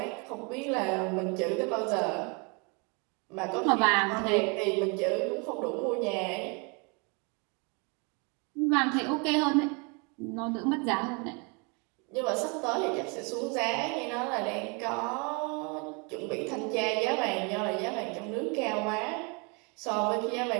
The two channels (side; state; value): left; quieter; 32.5 dB